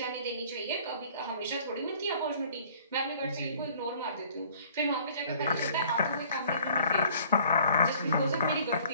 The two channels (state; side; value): inverted; both; correlation -0.54